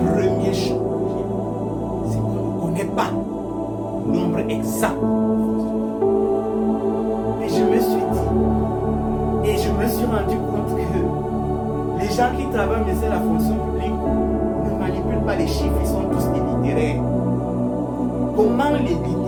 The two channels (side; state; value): both; identical; correlation 1.00